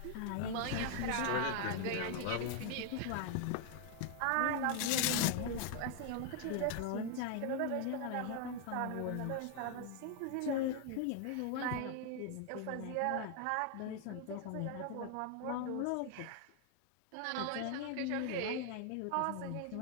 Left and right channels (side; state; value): both; different; correlation 0.00